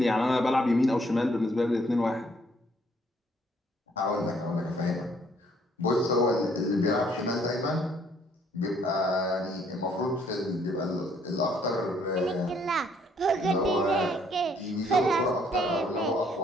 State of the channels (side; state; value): both; normal; correlation 0.65